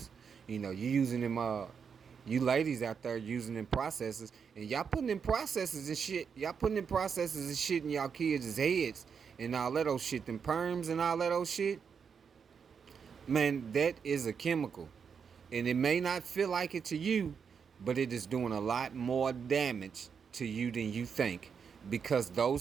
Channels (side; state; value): left; quieter; 6.5 dB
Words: You using them, you ladies out there using them processes, and y'all putting in processes and shit. Y'all putting in processes and shit in y'all kids' heads and all that old shit, them perms and all that old shit. Man, that is a chemical. And it may not feel like it to you, but it is doing a lot more damage to you than you think, because